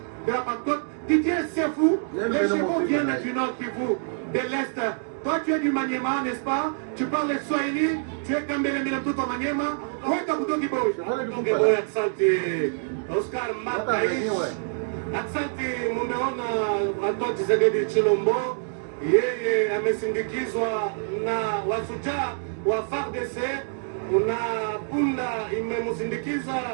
de la Pentecôte. Didier, c'est fou. Les chevaux viennent du nord Kivu, de l'est. Toi, tu es du Maniema, n'est-ce pas? Tu parles le Swahili, tu es Kambele Milamtuto Maniema. Où est Kabuto Kiboy? Oscar Mataïs. Asante, mumeona Antoine Tshisekedi Tshilombo, yeye amesindikizwa na wasujaa wa FARDC, na punda imemusindikiza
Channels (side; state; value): left; silent; digital silence